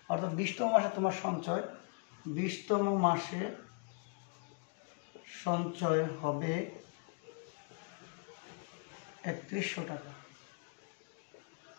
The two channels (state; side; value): quieter; right; 39.2 dB